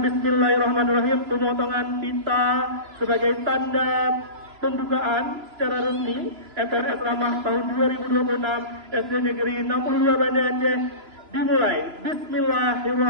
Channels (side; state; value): left; late; 3.0 ms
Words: pemotongan pita sebagai tanda pembukaan secara resmi FTNS Ramah tahun 2026 SD Negeri 62 Banda Aceh dimulai.